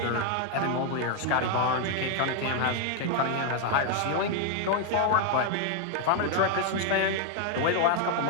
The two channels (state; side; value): different; both; correlation 0.01